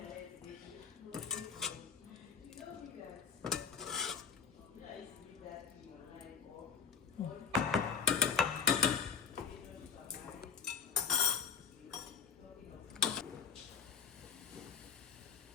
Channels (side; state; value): right; quieter; 6.8 dB